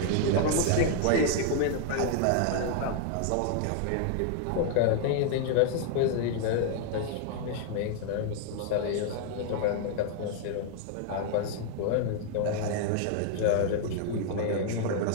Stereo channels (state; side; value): different; both; correlation 0.00